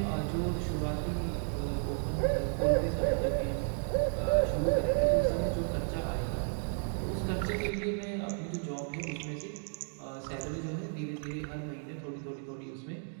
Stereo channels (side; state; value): left; silent; 56 dB below the other